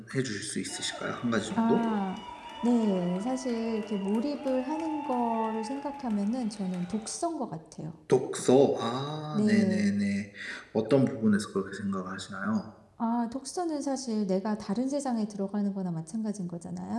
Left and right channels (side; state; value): both; identical; correlation 1.00